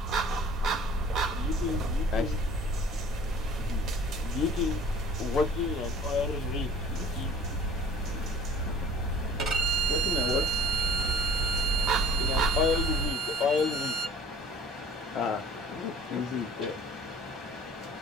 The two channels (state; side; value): normal; both; correlation 0.49